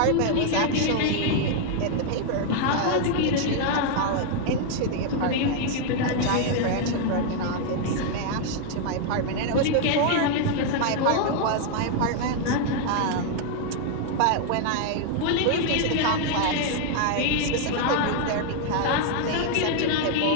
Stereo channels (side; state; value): both; different; correlation 0.00